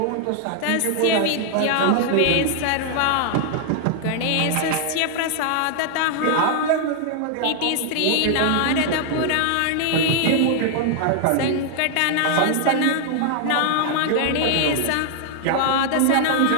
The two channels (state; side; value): different; both; correlation 0.00